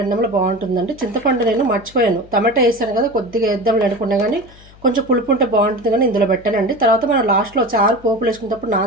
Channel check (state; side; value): noise; left; hum, 24 dB below the sound